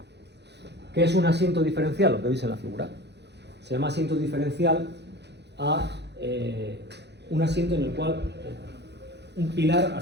¿Qué es un asiento diferencial? Lo que veis en la figura. Se llama asiento diferencial a un asiento en el cual un pilar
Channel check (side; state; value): left; late; 0.50 ms